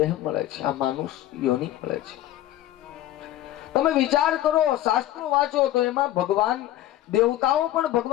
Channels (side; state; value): right; quieter; 13.6 dB